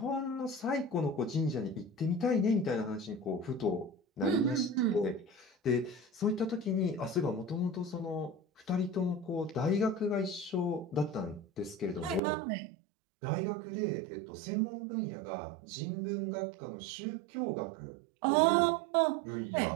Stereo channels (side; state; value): left; drops out; at 12.2 s